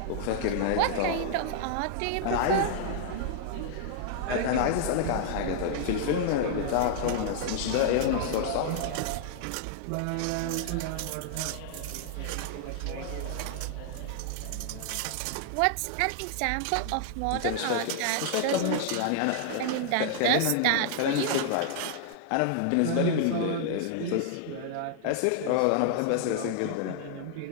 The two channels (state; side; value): different; both; correlation -0.01